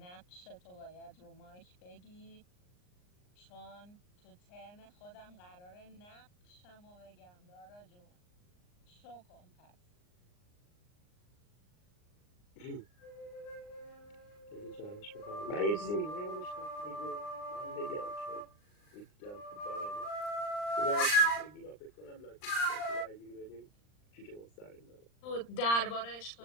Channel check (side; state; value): right; late; 39 ms